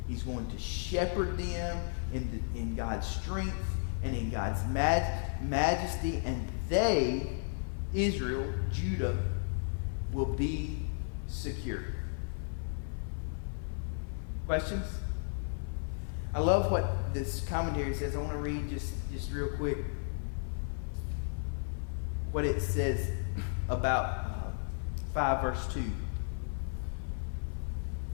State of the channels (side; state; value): right; silent; digital silence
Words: he's going to shepherd them in God's strength and in God's majesty, and they, Israel, Judah, will be secure. Questions? I love what this commentary says. I want to read just real quick what it says about 5 verse 2.